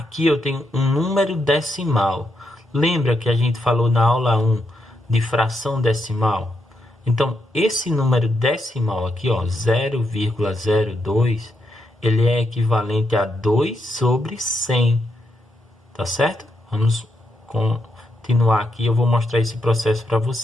eu tenho um número decimal. Lembra que a gente falou na aula 1 de fração decimal? Então, esse número decimal aqui, ó, 0,02, ele é equivalente a 2 sobre 100. Tá certo? Vamos continuar aqui. Eu vou mostrar esse processo para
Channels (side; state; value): both; normal; correlation 0.81